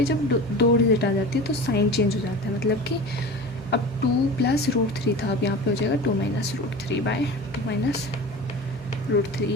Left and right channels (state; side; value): normal; both; correlation 0.34